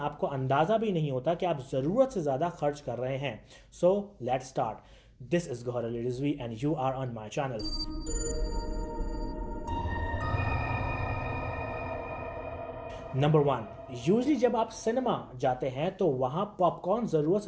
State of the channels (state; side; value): identical; both; correlation 1.00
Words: अंदाज़ा भी नहीं होता कि आप ज़रूरत से ज़्यादा खर्च कर रहे हैं। So let's start. This is Gauhar Ali Rizvi and you are on my channel. Number 1, usually जब आप सिनेमा जाते हैं तो वहाँ पॉपकॉर्न ज़रूरत